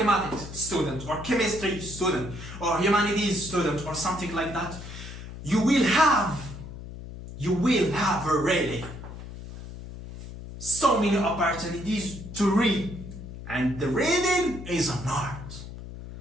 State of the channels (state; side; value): noise; left; hum, 12 dB below the sound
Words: student, or chemistry student, or humanities student, or something like that, you will have you will have really so many opportunities to read. And the reading is an art.